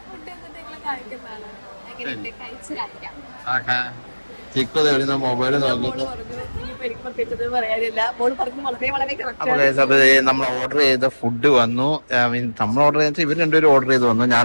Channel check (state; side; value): inverted; both; correlation -1.00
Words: മൊബൈൽ നോക്കുന്നു. നമ്മൾ ഓർഡർ ചെയ്ത ഫുഡ് വന്നു. നമ്മൾ ഓർഡർ ചെയ്ത ഇവർ രണ്ടുപേരും ഓർഡർ ചെയ്ത് വന്നു. ഞാൻ